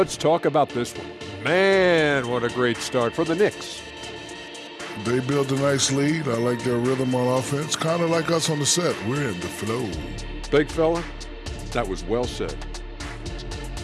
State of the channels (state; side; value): identical; both; correlation 1.00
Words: talk about this one. Man, what a great start for the Knicks. They built a nice lead. I like their rhythm on offense. Kind of like us on the set. We're in the flow. Big fella, that was well said.